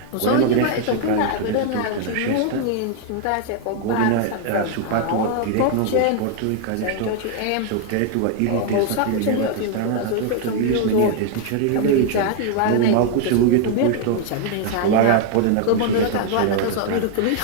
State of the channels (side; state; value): both; different; correlation 0.00